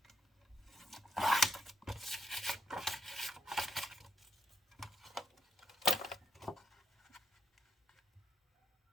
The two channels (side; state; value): both; normal; correlation 0.78